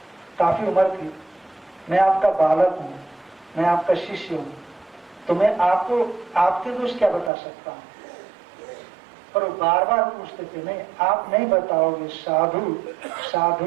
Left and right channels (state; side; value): drops out; left; at 7.3 s